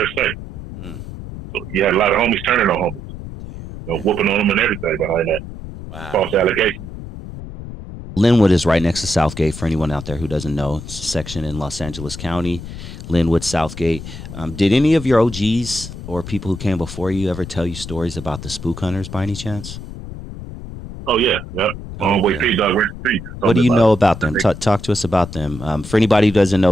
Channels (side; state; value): left; noise; rumble, 11 dB below the sound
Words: say. So you had a lot of homies turning on homies. Whooping on them and everything behind that. Wow. False allegation. Lynwood is right next to Southgate, for anyone out there who doesn't know. It's a section in Los Angeles County, Lynwood, Southgate. Did any of your OGs or people who came before you ever tell you stories about the spook hunters by any chance? Oh, yeah. Yep. Homeboy P Dog, rest in peace. What do you know about them? Talk to us about them. For anybody who doesn't